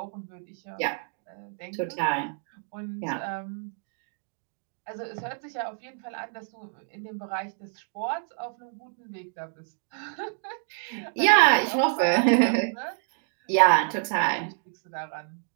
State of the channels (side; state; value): left; silent; 59 dB below the other